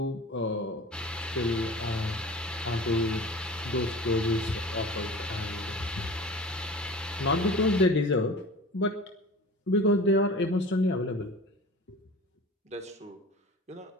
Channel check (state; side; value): normal; both; correlation 0.39